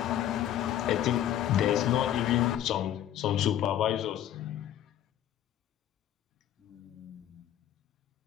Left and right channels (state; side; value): quieter; right; 11.4 dB